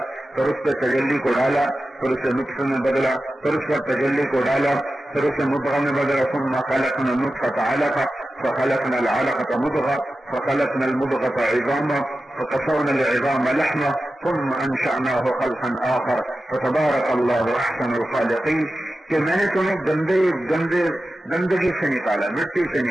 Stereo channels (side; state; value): both; normal; correlation 0.93